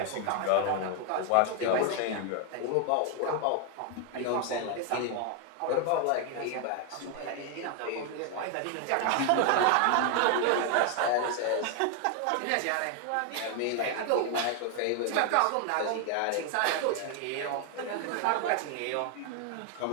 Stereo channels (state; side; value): different; both; correlation 0.01